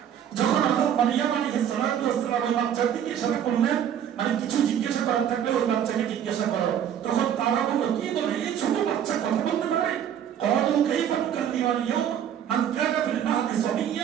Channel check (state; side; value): quieter; left; 9.5 dB